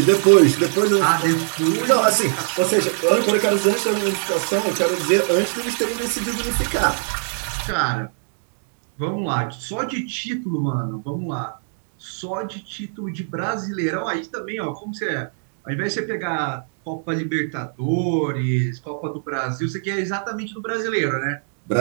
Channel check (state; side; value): silent; left; digital silence